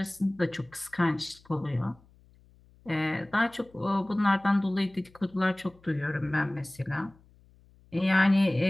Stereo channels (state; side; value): noise; left; hum, 29 dB below the sound